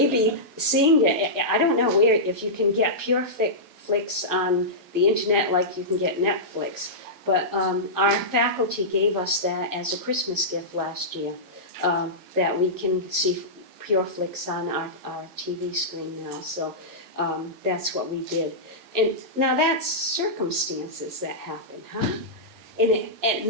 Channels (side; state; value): left; late; 11 ms